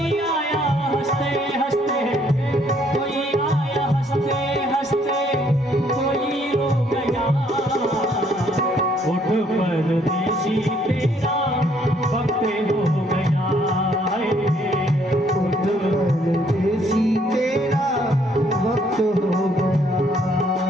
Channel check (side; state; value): both; normal; correlation 0.66